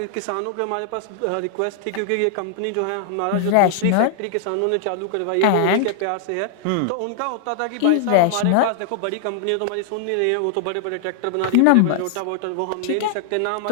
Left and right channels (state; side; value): different; both; correlation -0.01